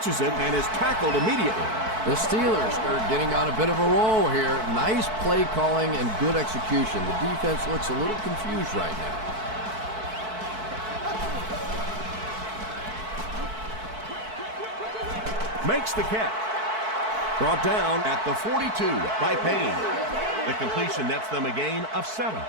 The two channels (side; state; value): left; late; 4.6 ms